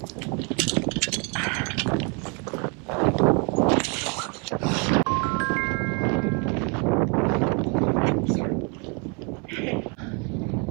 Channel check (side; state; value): left; quieter; 34.0 dB